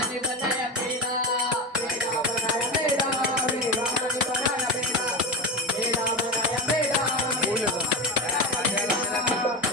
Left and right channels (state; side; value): normal; both; correlation 0.19